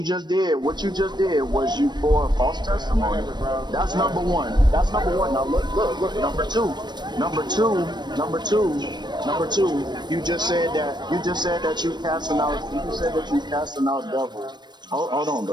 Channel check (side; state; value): left; late; 0.21 ms